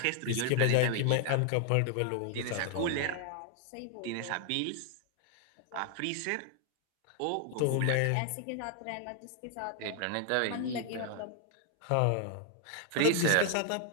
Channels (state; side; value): different; both; correlation 0.00